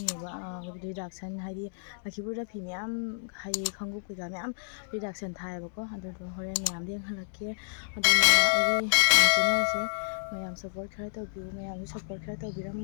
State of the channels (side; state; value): right; silent; digital silence